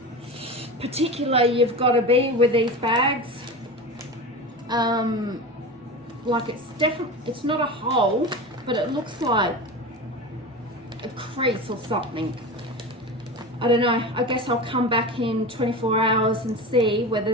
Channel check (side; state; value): both; normal; correlation 0.27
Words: particular you've got to be with these bags. Like it's not a hole, but it looks like a crease or something. I don't know. I guess I'll come back in 24 hours and see whether